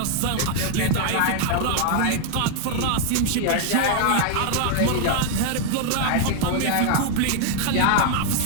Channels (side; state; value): both; different; correlation 0.00